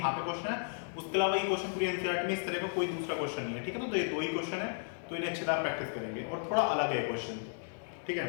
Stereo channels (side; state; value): right; silent; 55 dB below the other